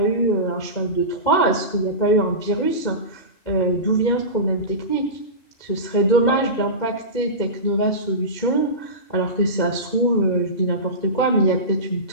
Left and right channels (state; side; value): late; right; 2.2 ms